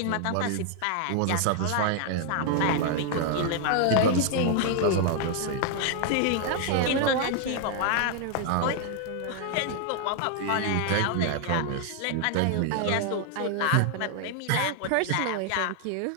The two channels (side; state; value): both; different; correlation 0.00